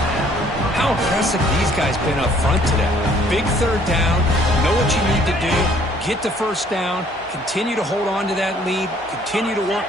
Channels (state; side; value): normal; both; correlation 0.60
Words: How impressive these guys been up front today. Big third down, know what you need to do, get the first down, continue to hold on to that lead, continue to work